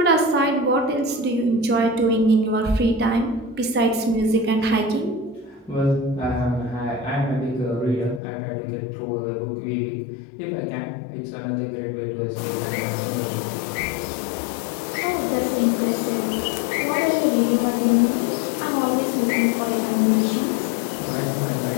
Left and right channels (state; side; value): drops out; right; at 8.2 s